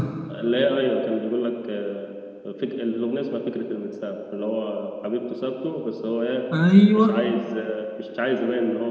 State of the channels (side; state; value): both; identical; correlation 1.00